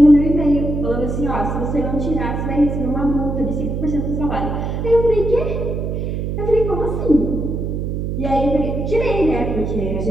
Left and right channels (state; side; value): noise; right; hum, 3 dB below the sound